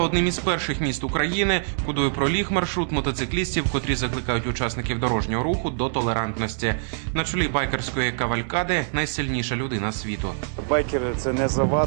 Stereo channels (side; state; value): left; silent; 62 dB below the other